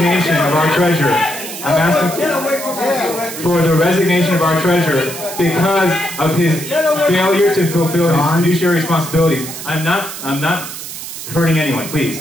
of our treasurer. I'm asking for the resignation of our treasurer because of his failure to fulfill his fiduciary responsibilities. I'm not hurting anyone, please.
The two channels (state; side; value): noise; right; hiss, 10 dB below the sound